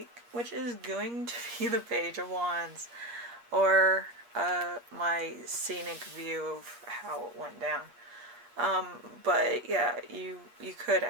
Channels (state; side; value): late; left; 8.4 ms